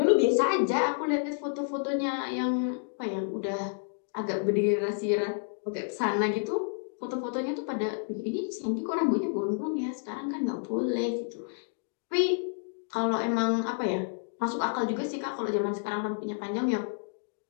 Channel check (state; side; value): silent; right; digital silence